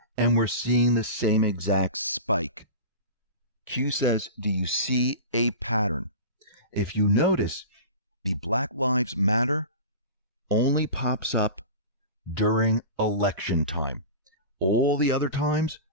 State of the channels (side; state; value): both; inverted; correlation -0.32